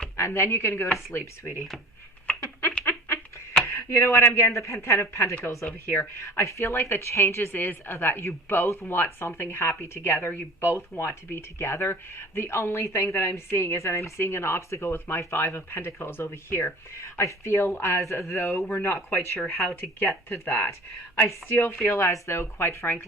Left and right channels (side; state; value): both; normal; correlation 0.43